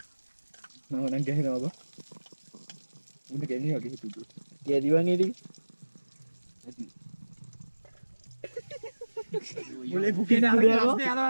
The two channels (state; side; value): inverted; both; correlation -1.00